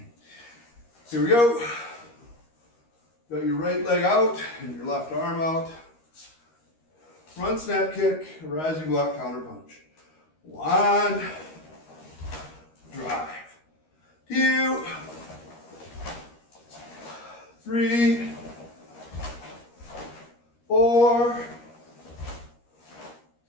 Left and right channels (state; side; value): late; right; 13 ms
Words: Here we go. Got your right leg out and your left arm out. Front snap kick, rising block counterpunch. 1, drive. 2, 3, 4,